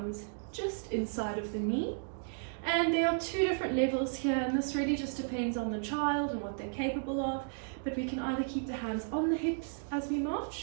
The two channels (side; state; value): left; silent; digital silence